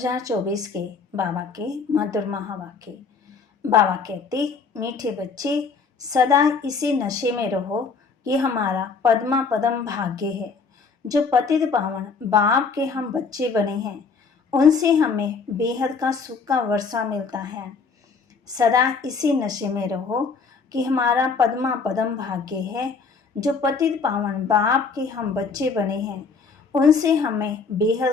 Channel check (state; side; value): quieter; right; 5.0 dB